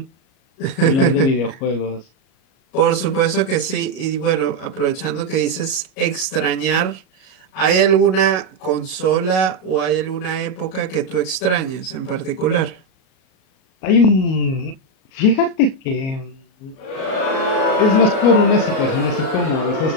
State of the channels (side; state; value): right; late; 38 ms